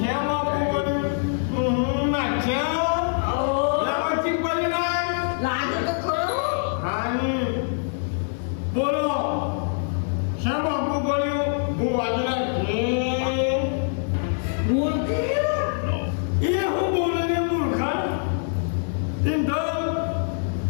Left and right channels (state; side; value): silent; right; digital silence